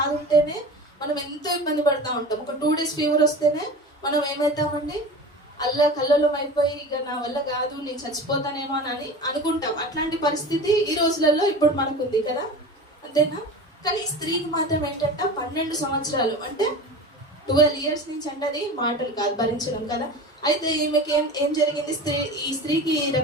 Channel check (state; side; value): normal; both; correlation 0.33